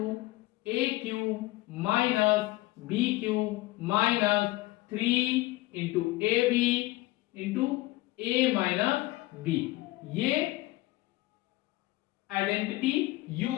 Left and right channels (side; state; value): right; quieter; 19.0 dB